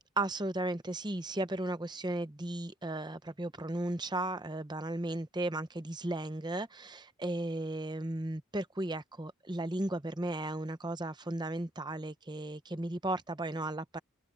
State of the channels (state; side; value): normal; both; correlation 0.71